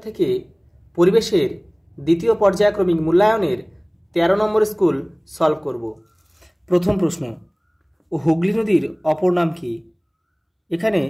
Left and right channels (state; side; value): identical; both; correlation 1.00